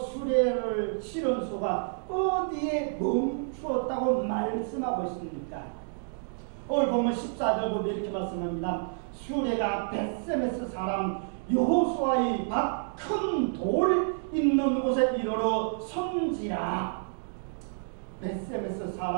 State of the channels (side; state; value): left; silent; digital silence